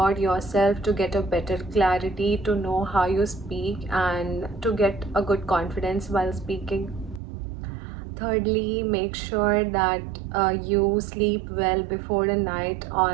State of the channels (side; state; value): left; drops out; at 7.2 s